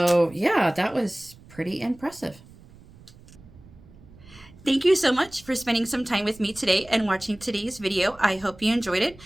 yeah, that was pretty impressive. Thank you so much for spending some time with me today and watching today's video. I hope you enjoyed it.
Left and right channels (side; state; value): right; noise; rumble, 23 dB below the sound